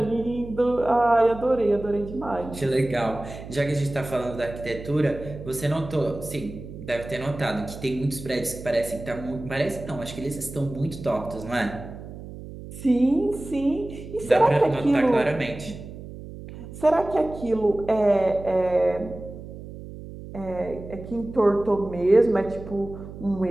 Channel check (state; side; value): noise; right; hum, 13 dB below the sound